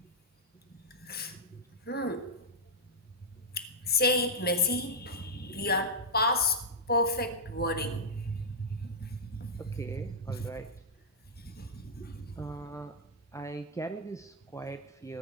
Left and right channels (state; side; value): normal; both; correlation -0.07